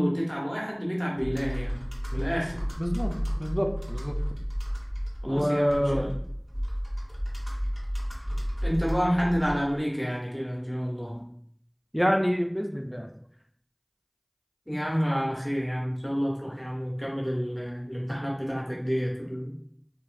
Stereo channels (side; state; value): both; identical; correlation 1.00